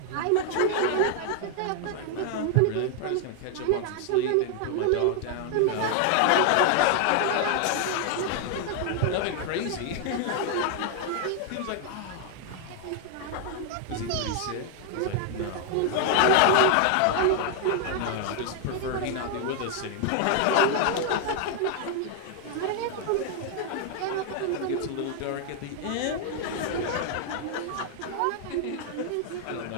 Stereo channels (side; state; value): both; different; correlation 0.00